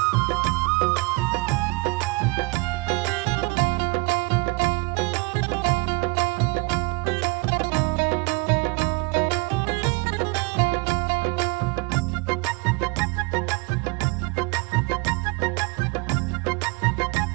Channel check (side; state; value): left; quieter; 26.9 dB